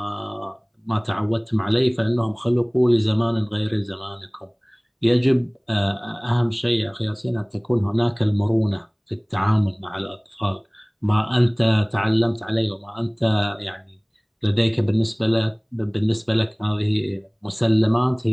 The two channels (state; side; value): identical; both; correlation 1.00